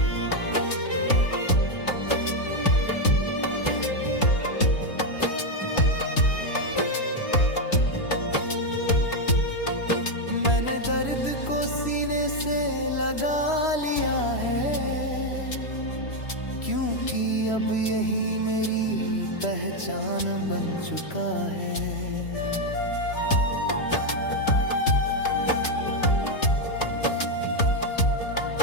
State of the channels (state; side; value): late; right; 3.0 ms